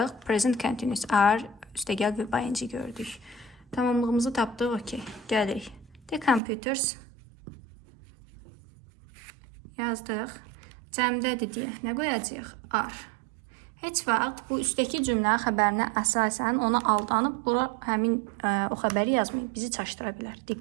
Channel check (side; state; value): left; drops out; at 6.4 s